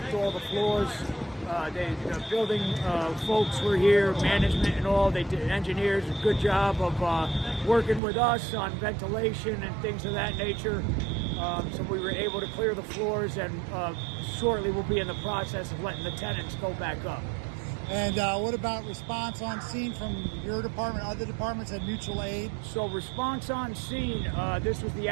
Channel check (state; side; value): drops out; left; at 8.0 s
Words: all the floors. The building folks were here, management and all. They did, engineers, a good job of working with us on ventilation and things of that nature. So we were able to clear the floors, and shortly we'll be in the process of letting the tenants go back up. And what about response on scene from your department, other departments, and mutual aid? So response on scene, this was the